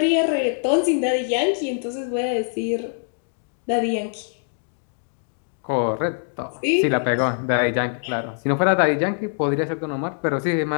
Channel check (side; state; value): right; silent; digital silence